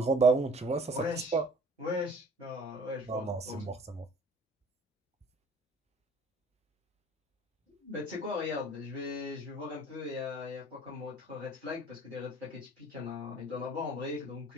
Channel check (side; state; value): both; normal; correlation 0.51